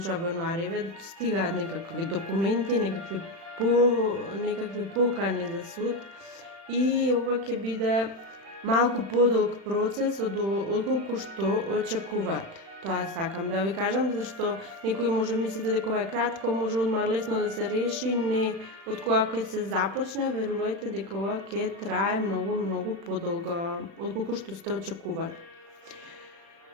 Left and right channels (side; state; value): left; late; 36 ms